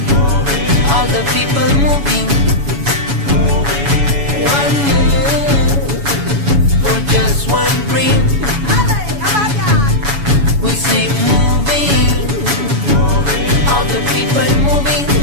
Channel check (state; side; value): late; left; 7.1 ms